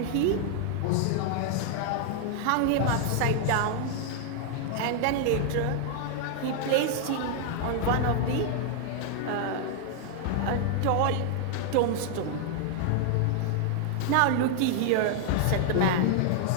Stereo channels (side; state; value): both; different; correlation 0.00